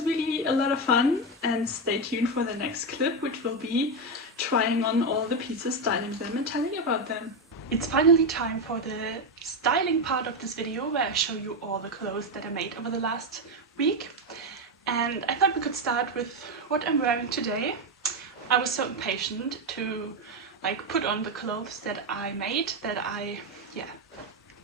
really a lot of fun, and stay tuned for the next clip, which will be trying on all the pieces, styling them and telling you about them. It's finally time for the styling part of this video, where I show you all the clothes that I made over the last week. And I thought we could start with what I'm wearing today. I was so impatient to like put on the clothes that I made, that I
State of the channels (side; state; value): both; normal; correlation 0.09